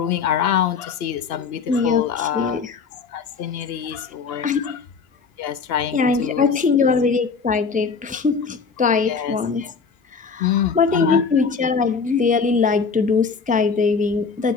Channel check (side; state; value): right; quieter; 5.3 dB